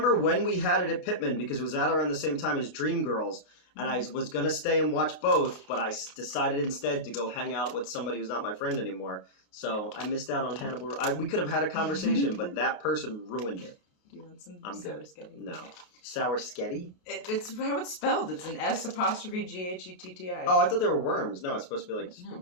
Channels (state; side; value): late; right; 28 ms